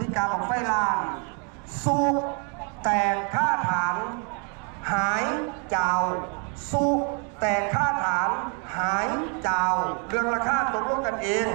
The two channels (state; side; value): quieter; left; 36.4 dB